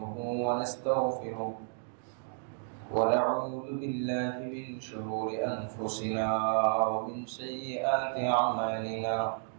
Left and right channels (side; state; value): left; silent; digital silence